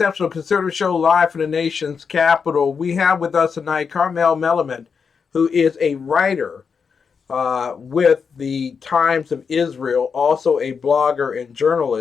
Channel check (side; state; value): right; quieter; 5.9 dB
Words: Conservative Show live from the nation's capital. We have with us tonight Karmel Melamed, who is a writer with the Times of Israel, also a blogger and